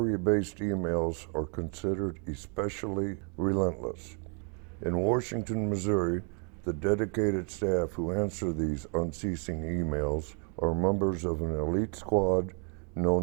emails are considered especially relentless. In Washington, Missouri, the dedicated staff who answer these unceasing emails are members of an elite squad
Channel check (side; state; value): left; quieter; 38.3 dB